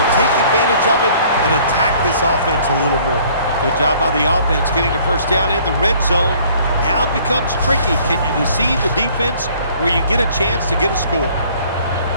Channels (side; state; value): both; inverted; correlation -0.57